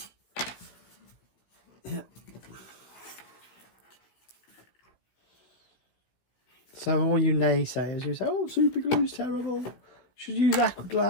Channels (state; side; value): late; right; 16 ms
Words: Yeah. So all you naysayers who say, oh, super glue's terrible, should use aqua